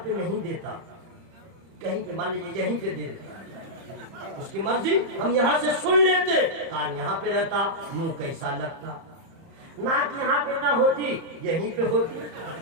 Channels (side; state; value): left; late; 30 ms